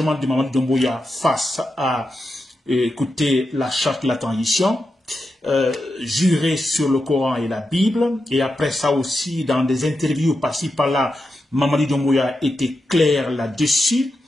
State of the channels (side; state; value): both; normal; correlation 0.88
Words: de Mamadi Doumbouya face à écouter la charte de la transition, jurer sur le Coran et la Bible, et après ça aussi dans des interviews par-ci par-là, Mamadi Doumbouya était clair là-dessus.